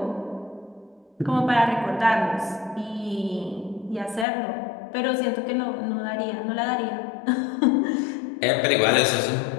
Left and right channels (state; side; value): drops out; right; at 4.2 s